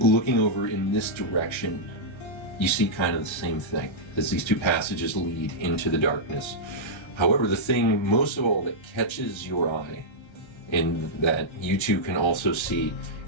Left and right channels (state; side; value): late; right; 1.3 ms